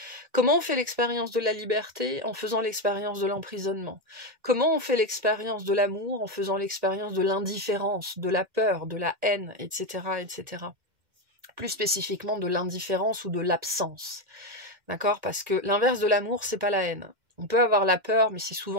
Comment on fait l'expérience de la liberté en faisant l'expérience de l'emprisonnement? Comment on fait l'expérience de l'amour en faisant l'expérience de l'indifférence, de la peur, de la haine, etc., etc. Plus spécifiquement de l'indifférence ou de l'absence. D'accord? Parce que l'inverse de l'amour, c'est pas la haine. On peut avoir la peur, mais c'est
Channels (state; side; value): late; left; 2.1 ms